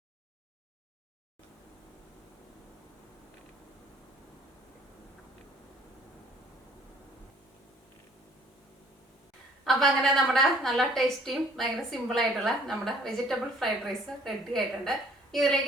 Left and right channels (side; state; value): both; normal; correlation 0.57